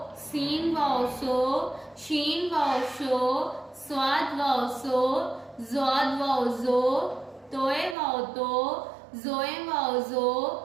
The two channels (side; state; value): left; drops out; at 8.0 s